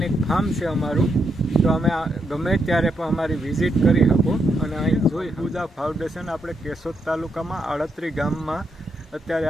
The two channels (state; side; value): normal; both; correlation 0.80